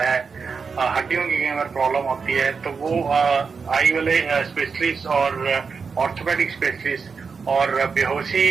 हड्डियों की कई बार प्रॉब्लम होती है, तो वो आई वाले स्पेशलिस्ट और ऑर्थोपेडिक स्पेशलिस्ट और बेहोशी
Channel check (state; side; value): quieter; left; 5.3 dB